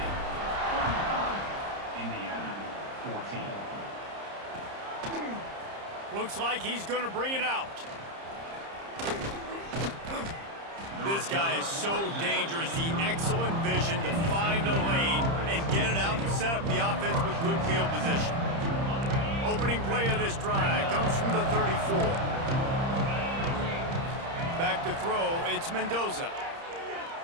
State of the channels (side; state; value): left; late; 30 ms